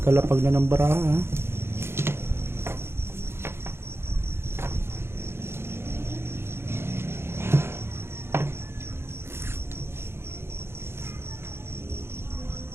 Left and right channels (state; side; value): late; left; 0.12 ms